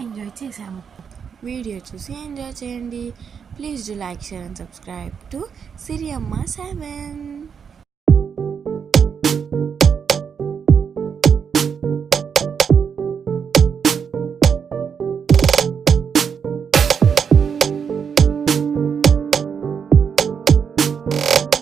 ఎంజాయ్ చేసాము. వీడియో చూసి ఎంజాయ్ చేయండి. Please do like, share and subscribe to Siriyamma 7.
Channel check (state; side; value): quieter; left; 6.8 dB